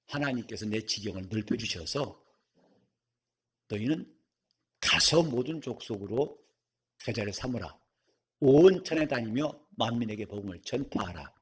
하나님께서 내 지경을 넓혀주셔서 너희는 가서 모든 족속으로 제자를 삼으라. 온 천에 다니며 만민에게 복음을 전파하라.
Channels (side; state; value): both; identical; correlation 1.00